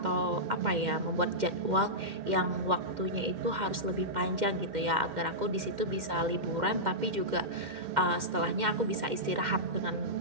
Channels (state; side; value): late; left; 2.1 ms